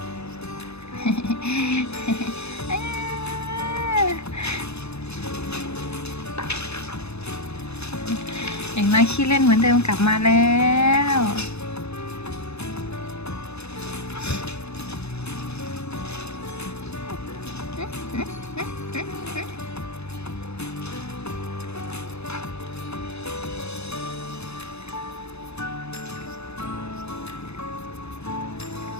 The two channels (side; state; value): right; late; 0.80 ms